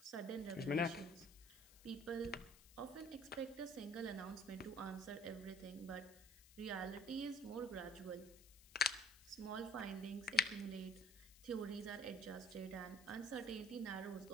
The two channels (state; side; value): noise; left; hiss, 21 dB below the sound